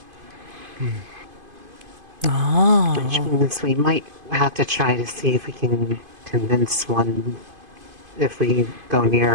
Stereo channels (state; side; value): late; left; 2.5 ms